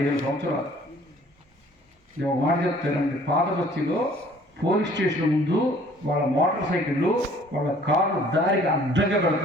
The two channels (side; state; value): both; normal; correlation 0.55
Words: సంవత్సరాలు. నేను ఒక మాట చెప్తానండి. పాత బస్తీలో పోలీస్ స్టేషన్ ముందు వాళ్ళ మోటార్ సైకిళ్ళు, వాళ్ళ కార్లు దారికి అడ్డంగా